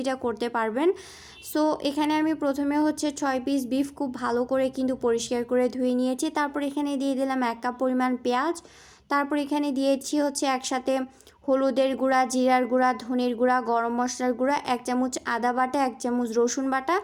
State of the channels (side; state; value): both; identical; correlation 1.00